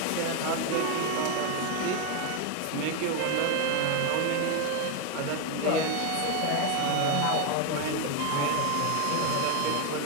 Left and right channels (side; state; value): both; different; correlation 0.01